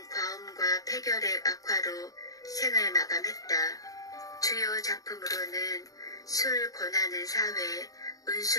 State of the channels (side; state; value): right; late; 0.17 ms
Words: 과음과 폐결핵 악화로 생을 마감했다. 주요 작품으로는 술 권하는 사회,